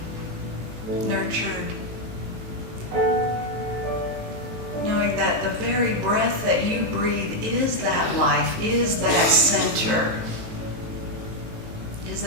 nurtured, knowing that the very breath that you breathe is that life, is that center, is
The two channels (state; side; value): late; left; 18 ms